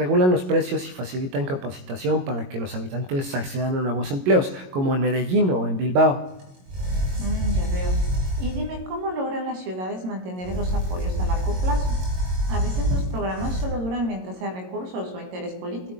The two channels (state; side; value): late; left; 22 ms